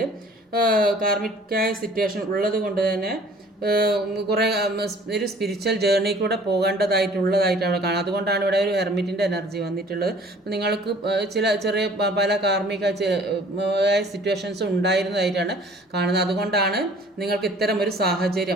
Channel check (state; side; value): normal; both; correlation 0.52